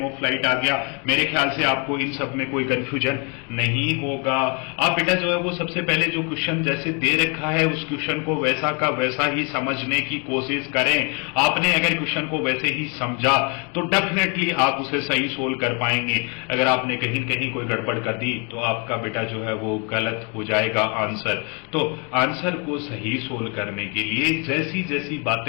ऑफ फ्लाइट आ गया। मेरे ख्याल से आपको इन सब में कोई कंफ्यूजन नहीं होगा। आप बेटा जो है वो सबसे पहले जो क्वेश्चन जैसे दे रखा है उस क्वेश्चन को वैसा का वैसा ही समझने की कोशिश करें। आपने अगर क्वेश्चन को वैसे ही समझा तो डेफिनेटली आप उसे सही सोल्व कर पाएंगे। अगर आपने कहीं कहीं कोई गड़बड़ कर दी तो आपका बेटा जो है वो गलत हो जाएगा आंसर। तो आंसर को सही सोल्व करने के लिए जैसी जैसी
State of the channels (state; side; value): quieter; right; 34.6 dB